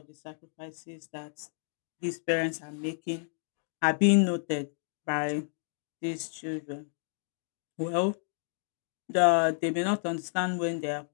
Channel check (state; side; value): silent; right; digital silence